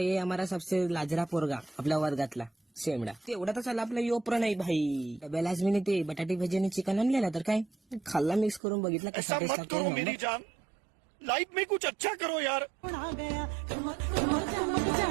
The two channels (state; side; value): drops out; left; at 8.6 s